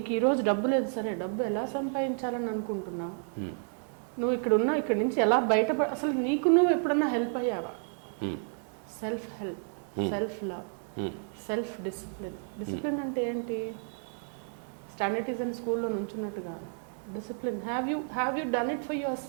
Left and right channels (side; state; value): left; silent; 57 dB below the other